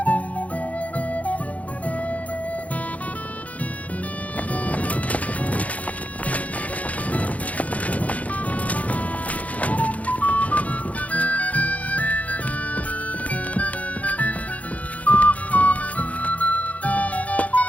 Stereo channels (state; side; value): late; right; 0.069 ms